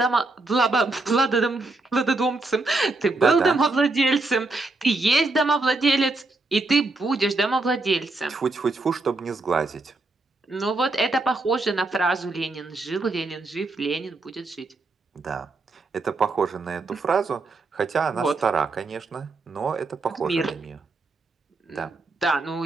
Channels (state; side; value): quieter; left; 3.3 dB